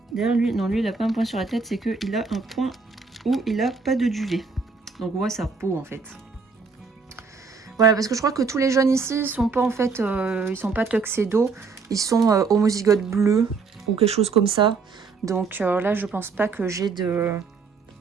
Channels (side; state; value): left; quieter; 4.8 dB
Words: D'ailleurs, lui, non, lui, il a pas un point sur la tête, c'est qu'il a un point où il a pas de duvet. Donc, on voit sa peau, en fait. Voilà, parce que je crois que tous les jeunes ici, ils sont pas, en fait, ils sont pas tuxedo. Ils sont homozygote bleu ou quelque chose comme ça. Donc, là, je pense pas que j'ai de